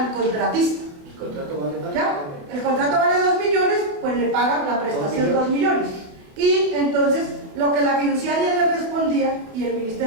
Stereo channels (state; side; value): late; left; 28 ms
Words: contratista. ¿El contrato vale más? ¿Ya? El contrato vale 2 millones, pues le pagan la prestación 2 millones. Y entonces lo que la fiduciaria le respondía y el